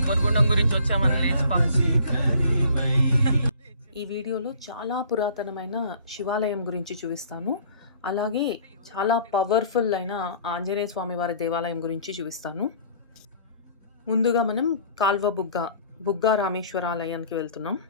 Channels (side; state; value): both; inverted; correlation -0.52